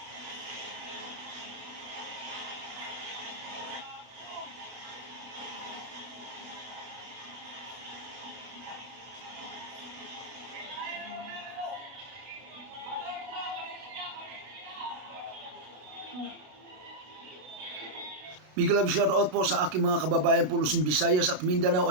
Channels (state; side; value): late; left; 33 ms